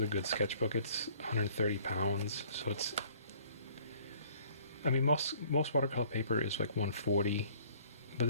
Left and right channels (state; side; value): inverted; both; correlation -0.57